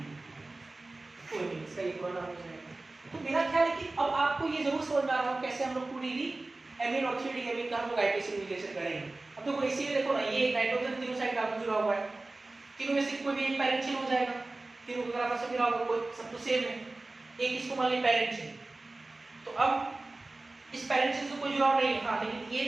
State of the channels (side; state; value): left; quieter; 3.1 dB